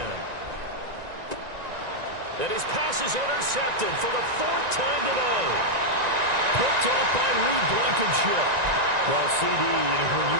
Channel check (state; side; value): late; left; 1.9 ms